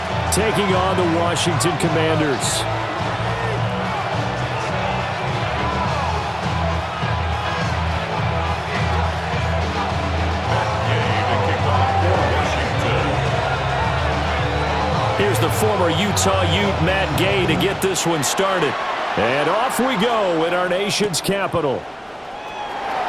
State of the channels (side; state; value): both; identical; correlation 1.00